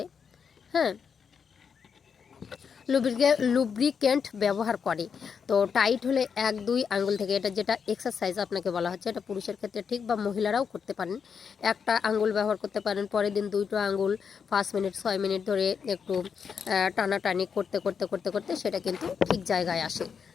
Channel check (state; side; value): quieter; right; 6.5 dB